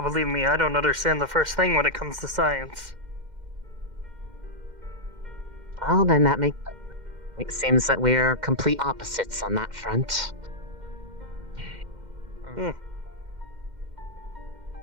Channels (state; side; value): late; left; 2.1 ms